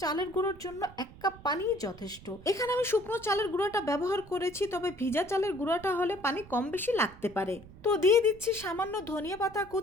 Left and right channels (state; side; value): noise; right; rumble, 20 dB below the sound